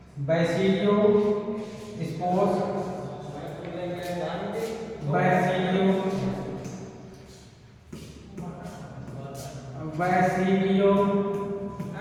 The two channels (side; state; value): both; identical; correlation 1.00